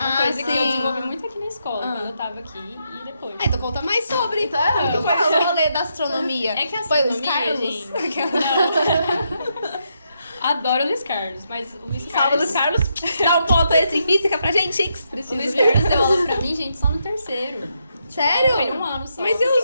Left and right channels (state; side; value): inverted; both; correlation -0.80